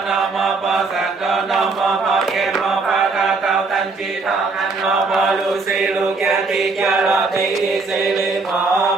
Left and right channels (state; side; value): quieter; left; 4.0 dB